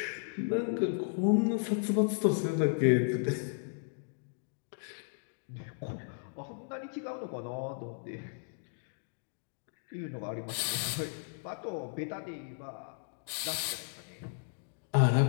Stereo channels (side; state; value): right; silent; digital silence